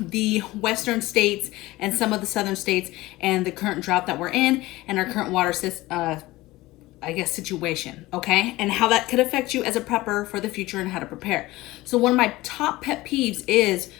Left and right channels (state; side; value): quieter; right; 19.0 dB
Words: the western states and some of the southern states and the current drought that we're in and our current water situation, okay? And how that could affect you as a prepper for the future and how to prepare. So one of my top pet peeves is